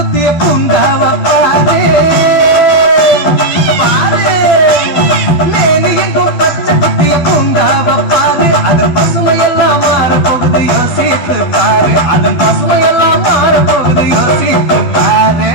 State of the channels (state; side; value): late; right; 12 ms